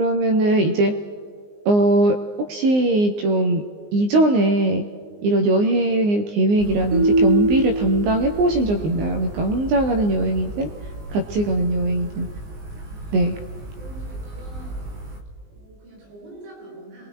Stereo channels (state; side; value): late; left; 19 ms